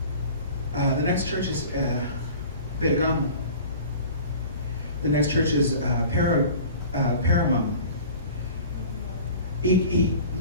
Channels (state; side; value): inverted; both; correlation -0.42